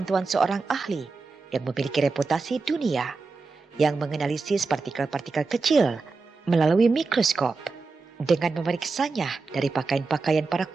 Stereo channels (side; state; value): left; quieter; 4.1 dB